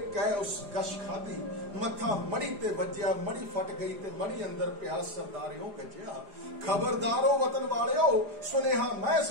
कह उस गश खादी मथा मड़ी ते वज्जिया, मड़ी फट गई ते मड़ी अंदर पिया सरदारियों गज्जिया। खबरदारो वतन वालियो सुनेहा मैं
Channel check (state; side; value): late; left; 4.9 ms